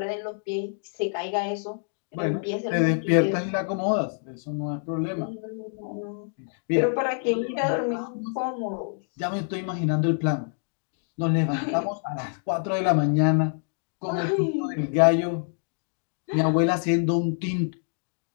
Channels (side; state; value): right; silent; digital silence